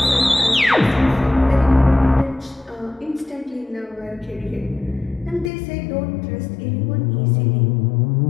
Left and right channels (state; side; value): drops out; right; at 5.5 s